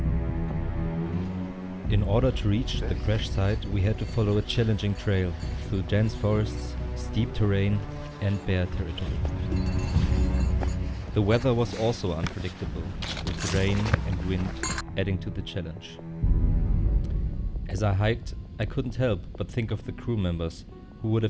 In order to reach the crash site, we had to follow a challenging trail through dense forests, steep terrain, and bare territory. The weather was also unpredictable, with rain and wind adding to the challenge. As I hiked, I couldn't help but think of the crew members who would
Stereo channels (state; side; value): identical; both; correlation 1.00